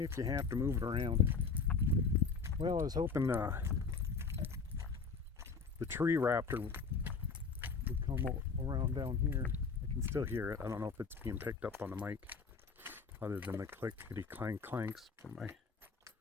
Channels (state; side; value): quieter; right; 5.2 dB